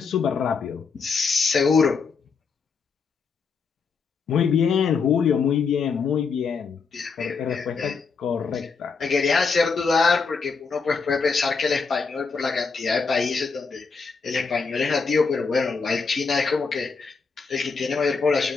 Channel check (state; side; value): quieter; right; 5.1 dB